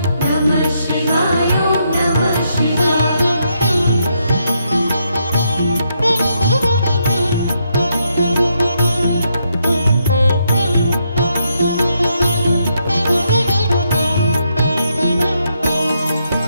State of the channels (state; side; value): inverted; both; correlation -0.78